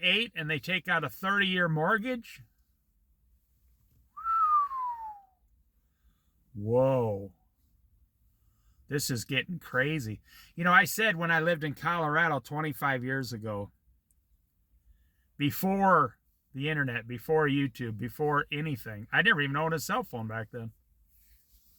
and they take out a 30-year mortgage? Whoa. This is getting crazy. You know, I said when I lived in Colorado 25 years ago, before the internet, before YouTube, before anything, I never even owned a cell phone back then.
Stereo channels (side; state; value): both; identical; correlation 1.00